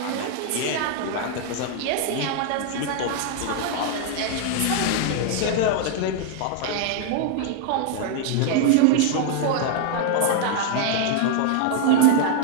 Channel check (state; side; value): different; both; correlation -0.01